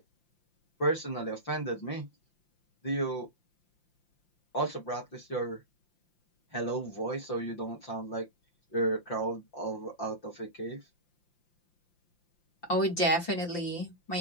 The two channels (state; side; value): late; right; 5.8 ms